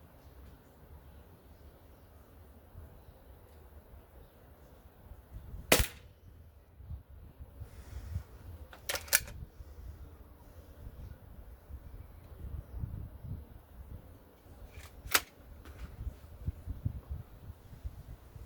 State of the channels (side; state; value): both; identical; correlation 1.00